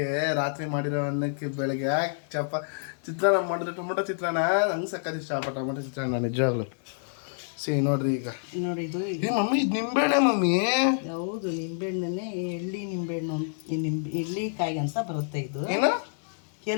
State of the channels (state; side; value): silent; right; digital silence